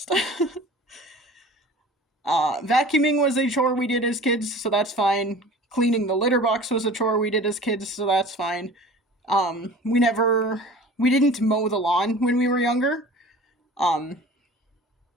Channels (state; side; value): normal; both; correlation 0.42